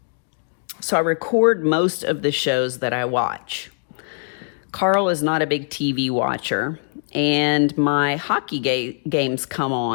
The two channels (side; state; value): right; silent; 64 dB below the other